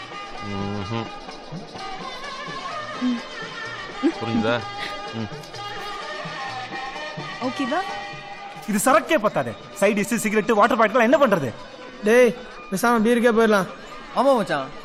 புரியுதா? ஓகேவா? இது சரக்கே பத்தாதே. Side dish cigarette water bottle என்ன பண்றது? டேய் பேசாம பீருக்கே போயிடலாம். ஆமா மச்சான்.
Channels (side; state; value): both; identical; correlation 1.00